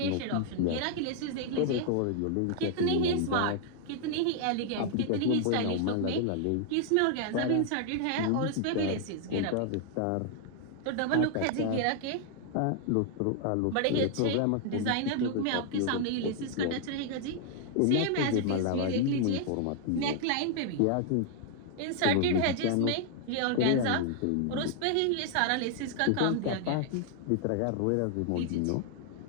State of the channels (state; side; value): different; both; correlation 0.00